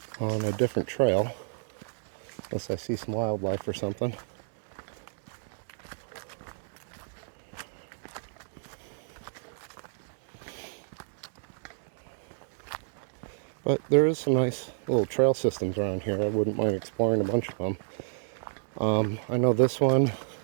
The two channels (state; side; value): silent; left; digital silence